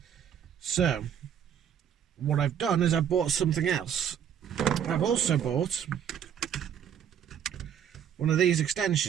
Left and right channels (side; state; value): left; quieter; 8.9 dB